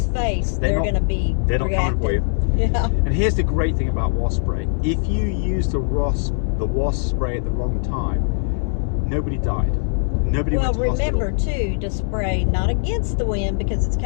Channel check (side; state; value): right; silent; 65 dB below the other